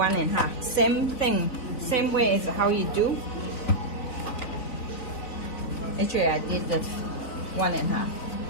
Same thing, same way as how you do. Actually, I did the 1.5.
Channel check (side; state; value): right; late; 3.9 ms